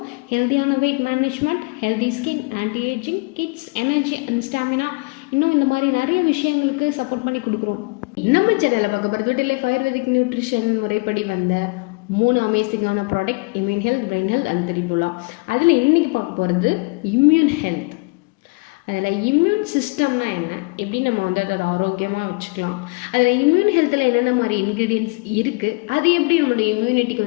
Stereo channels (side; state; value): right; quieter; 28.8 dB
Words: ஹெல்த்தியான wait management, healthy skin, anti ageing, kids, energy and stamina, இன்னும் இந்த மாதிரி நிறைய விஷயங்களுக்கு சப்போர்ட் பண்ணி கொடுக்குறோம். நம்ம சேனலில் பார்க்க போகிறது டெல்லிஃப் ஆயுர்வேதிக் நியூட்ரிஷன் முறைப்படி வந்த 3 அமேசிங்கான product: immune health, brain health and Triphala. அதில் இன்றைக்கி பார்க்க போகிறது இம்யூன் ஹெல்த். அதில் இம்யூன் சிஸ்டம்னா என்ன, எப்படி நம்ம அதை ஆரோக்கியமாக வச்சுக்கலாம், அதில் இம்யூன் ஹெல்த்தில் என்னென்ன மாதிரி இன்க்ரீடியன்ட்ஸ் இருக்குது, அது எப்படி நம்மளுடைய